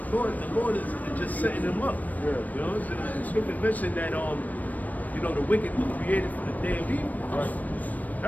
Lord is just setting them up. Yeah. The scripture mentioned that the wicked were created for the day of evil. Right.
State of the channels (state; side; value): late; right; 0.078 ms